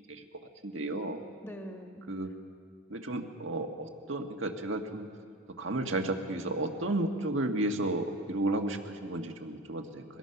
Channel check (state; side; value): normal; both; correlation 0.30